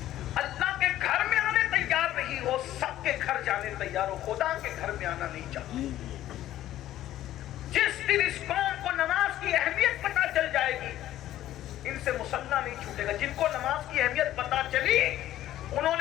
अल्लाह के घर में आने तैयार नहीं हो, सबके घर जाने तैयार हो, खुदा के घर में आना नहीं चाहते। जिस दिन इस कौम को नमाज की अहमियत पता चल जाएगी, इनसे मुसल्ला नहीं छूटेगा। जिनको नमाज की अहमियत पता चली,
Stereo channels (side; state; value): right; quieter; 13.4 dB